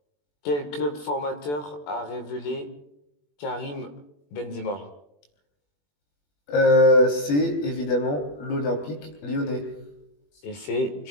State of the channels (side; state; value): right; late; 21 ms